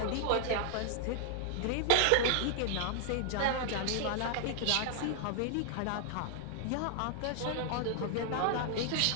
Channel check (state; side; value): different; both; correlation 0.00